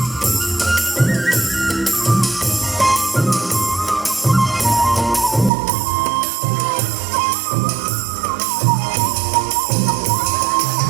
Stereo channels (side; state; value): left; drops out; at 5.5 s